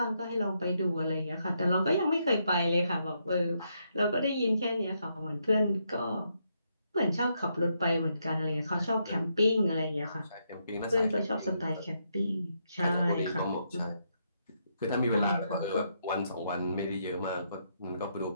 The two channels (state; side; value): inverted; both; correlation -0.78